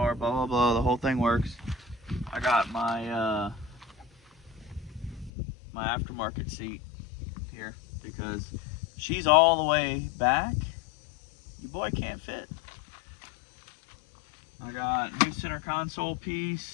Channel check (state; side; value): drops out; right; at 5.3 s